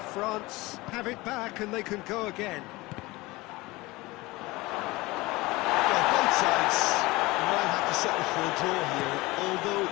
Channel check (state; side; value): quieter; right; 21.5 dB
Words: France have it back and they can go again. Sides might have to settle for a draw here, although